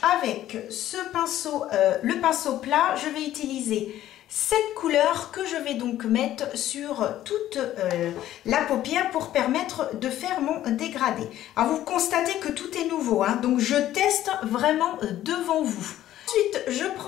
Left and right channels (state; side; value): quieter; right; 13.0 dB